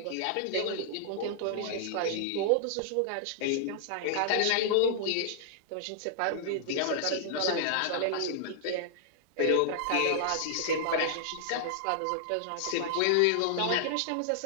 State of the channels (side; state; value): both; different; correlation -0.01